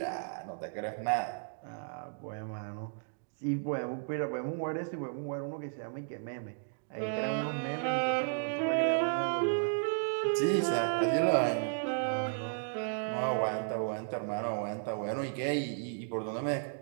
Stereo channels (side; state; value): left; silent; digital silence